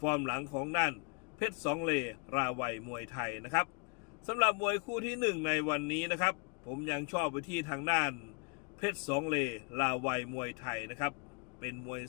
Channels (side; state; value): right; quieter; 34.0 dB